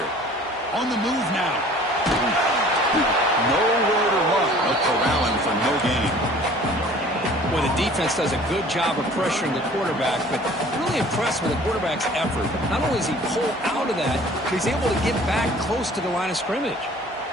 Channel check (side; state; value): both; normal; correlation 0.50